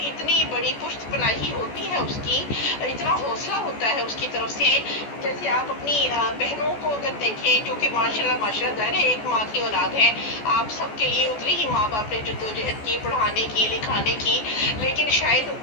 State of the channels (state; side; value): late; right; 14 ms